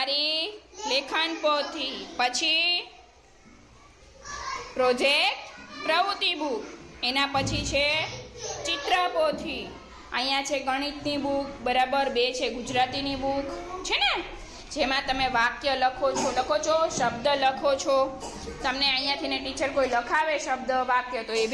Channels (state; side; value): identical; both; correlation 1.00